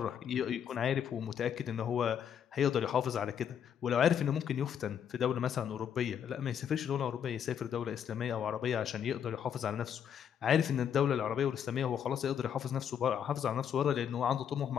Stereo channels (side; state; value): right; quieter; 8.6 dB